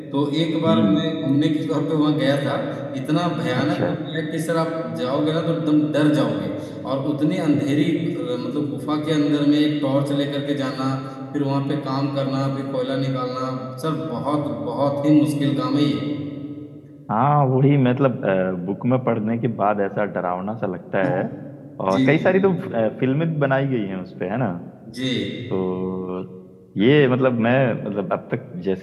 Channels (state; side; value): identical; both; correlation 1.00